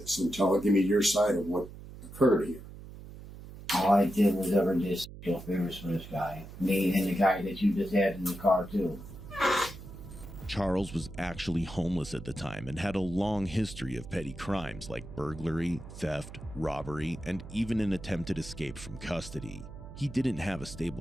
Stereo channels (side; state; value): right; noise; hum, 14 dB below the sound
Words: and give me your side of what occurred here? All I did was ever just feel favors for this guy. Me and the guy that you just had in the car too. Charles was actually homeless at the time and had a long history of petty crimes like burglary, theft, robbery, and even an attempted escape from custody. He didn't have a